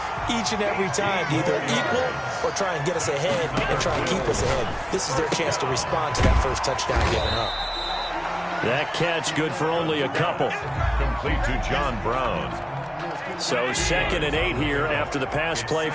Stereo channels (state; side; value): identical; both; correlation 1.00